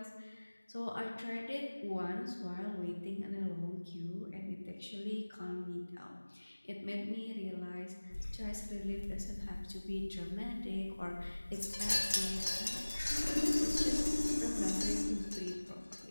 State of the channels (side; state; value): both; inverted; correlation -1.00